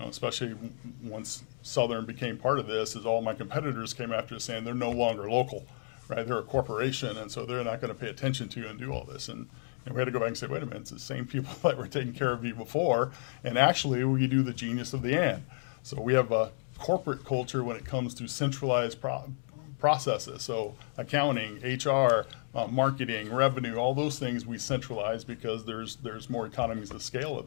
especially once Southern became part of this, is all my competitors came after us saying they're no longer local, right? They're a corporation, and so they're not going to pay attention to you and do all this. And we had to go back and say, wait a minute, it's the same people that were taking care of you before, and actually we do the genius of the and. So we have a corporate culture when it comes to centralized processes. So accounting, HR, marketing, revenue, all those things we centralize because there's more economies of scale of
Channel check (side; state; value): right; silent; digital silence